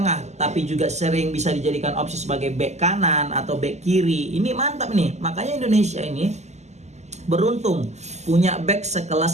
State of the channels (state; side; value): late; left; 0.33 ms